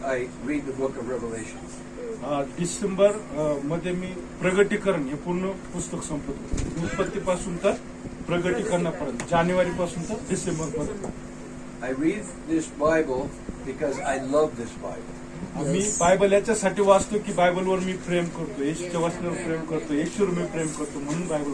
I read the book of Revelation. December मध्ये मी प्रगटीकरण हे पूर्ण पुस्तक संपवतो. उत्पत्तीपासून तर प्रगटीकरणापर्यंत, जानेवारीपासून तर डिसेंबर पर्यंत. I read this Bible because I love this Bible. Me Bible याच्यासाठी वाचतो की बायबलवर मी प्रेम करतो, येशूच्या वचनावर प्रेम करतो, येशूवर मी प्रेम करतो म्हणून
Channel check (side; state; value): both; identical; correlation 1.00